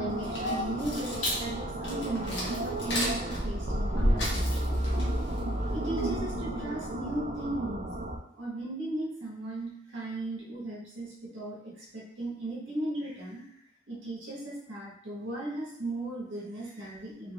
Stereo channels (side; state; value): both; normal; correlation 0.64